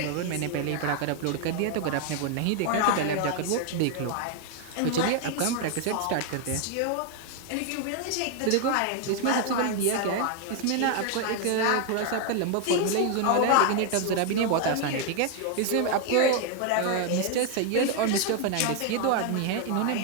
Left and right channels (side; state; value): both; different; correlation 0.01